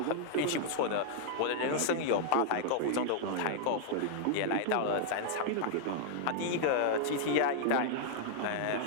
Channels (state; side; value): different; both; correlation -0.01